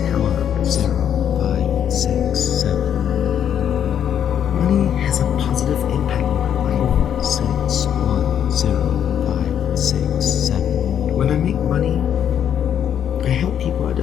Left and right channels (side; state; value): right; quieter; 9.3 dB